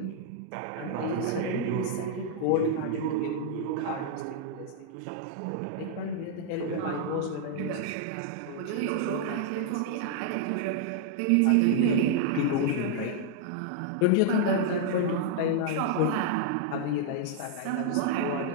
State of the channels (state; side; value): different; both; correlation -0.01